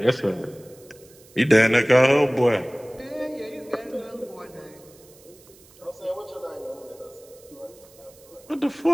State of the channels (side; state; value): right; noise; hiss, 25 dB below the sound